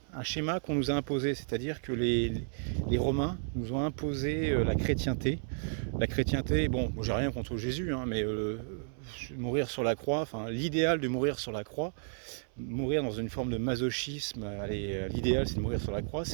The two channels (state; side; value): silent; left; 56 dB below the other